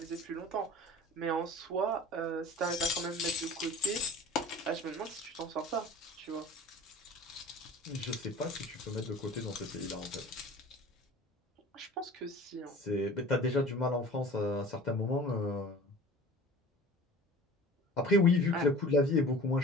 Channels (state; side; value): normal; both; correlation 0.41